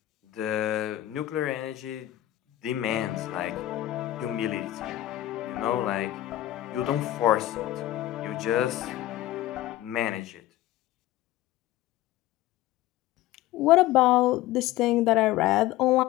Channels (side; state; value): right; quieter; 14.7 dB